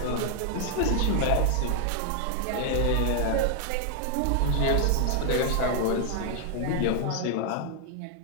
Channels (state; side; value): different; both; correlation 0.00